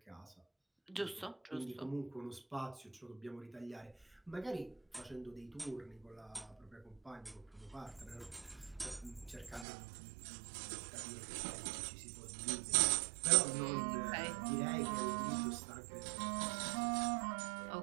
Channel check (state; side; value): drops out; left; at 9.7 s